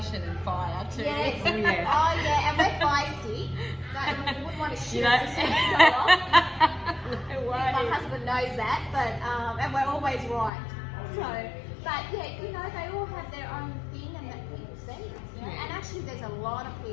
and fire too. Yes. Oh, yeah. Oh yeah, and we're feisty. No, we wouldn't want to shoot You know. us as soon as we go off. No My way. husband knows that, but and we're always right. So, but yeah, you know, they all have their own thing and that people see. You know? Yeah. And actually, there's a lot of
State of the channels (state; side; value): drops out; right; at 10.5 s